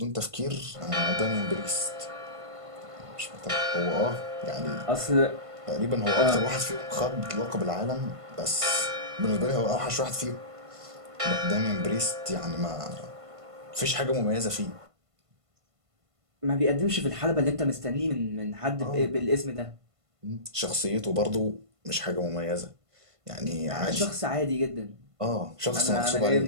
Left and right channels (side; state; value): left; late; 1.5 ms